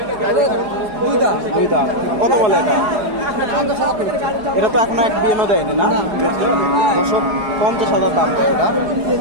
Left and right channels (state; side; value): late; left; 4.8 ms